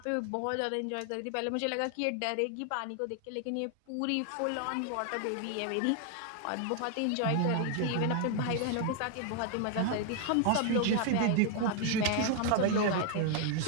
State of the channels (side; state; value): both; different; correlation 0.00